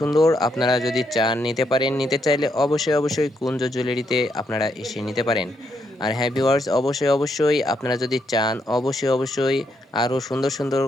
আপনারা যদি চান নিতে পারেন, নিতে চাইলে অবশ্যই কুঞ্জ জুয়েলারিতে আপনারা এসে নিতে পারেন। আর হ্যাঁ ভিউয়ার্স, অবশ্যই আপনারা যদি চান অবশ্যই আরও সুন্দর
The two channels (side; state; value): both; normal; correlation 0.77